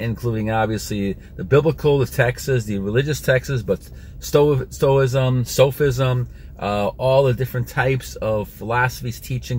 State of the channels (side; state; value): both; identical; correlation 1.00